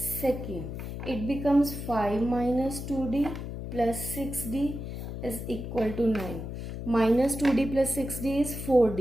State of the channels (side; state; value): left; noise; hum, 7 dB below the sound